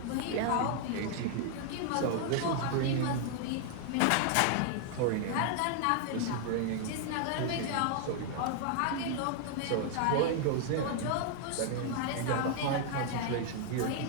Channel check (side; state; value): both; different; correlation 0.00